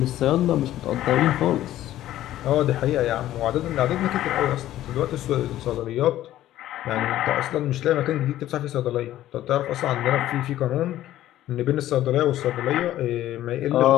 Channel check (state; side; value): quieter; right; 13.6 dB